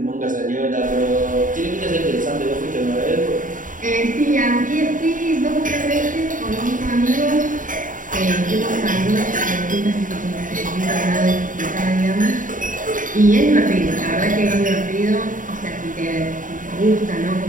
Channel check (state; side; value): late; left; 0.38 ms